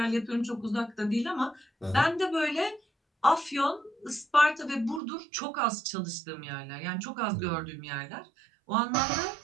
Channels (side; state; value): left; drops out; at 5.0 s